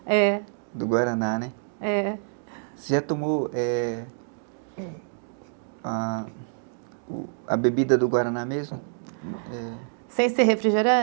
É. Do Guaraná, né? É. Você já tomou a bebida do Guaraná mesmo? Sem ser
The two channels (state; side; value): silent; left; digital silence